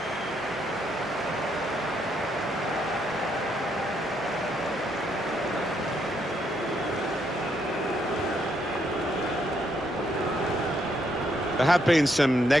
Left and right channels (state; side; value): normal; both; correlation 0.75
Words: There have been some